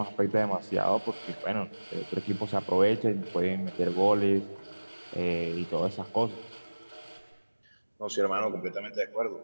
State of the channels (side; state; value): both; inverted; correlation -1.00